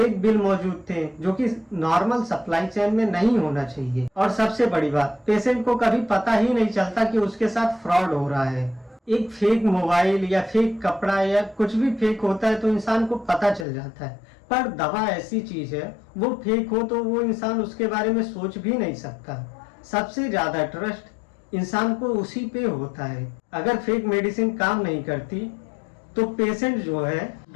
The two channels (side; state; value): right; drops out; at 13.7 s